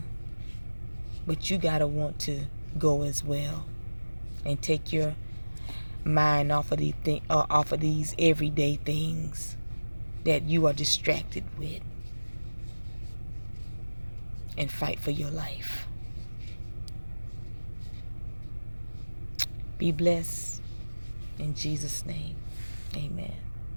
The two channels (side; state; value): both; inverted; correlation -1.00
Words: But you got to want to go as well. And take your mind off of these everyday things that you are distracted with. And fight for your life. Be blessed. In Jesus' name, amen.